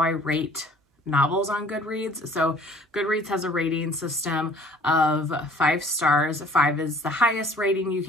I rate novels on Goodreads. So Goodreads has a rating system of 5 stars. 5 is the highest rating you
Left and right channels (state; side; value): normal; both; correlation 0.53